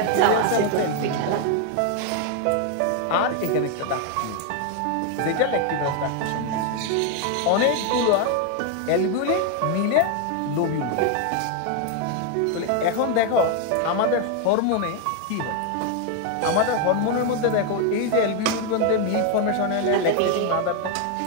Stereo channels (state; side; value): different; both; correlation 0.01